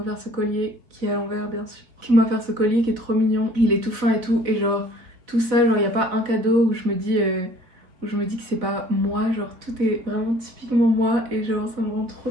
ce collier, qui est à l'envers bien sûr, qui m'a offert ce collier qui est trop mignon, il est tout fin et tout. Et genre tout ça, genre y a pas un cadeau où je me dis que c'est pas moi, genre tout est vraiment typiquement moi. Et genre ça me rend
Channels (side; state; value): left; late; 4.2 ms